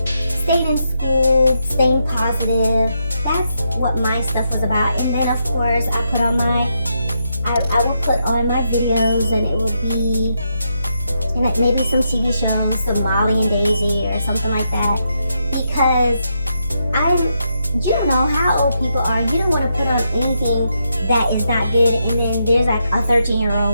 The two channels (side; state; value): both; inverted; correlation -0.81